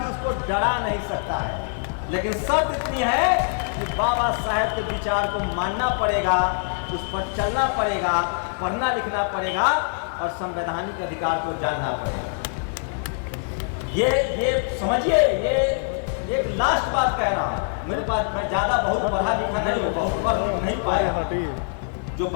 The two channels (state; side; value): silent; right; digital silence